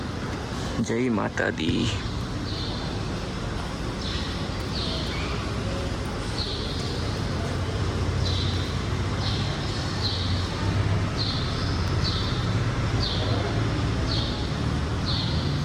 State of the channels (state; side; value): identical; both; correlation 1.00